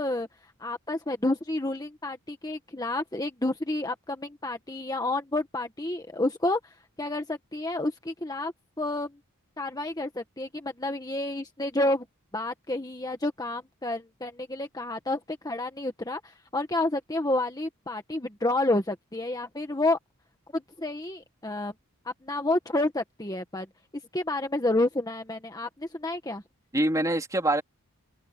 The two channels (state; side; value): normal; both; correlation 0.67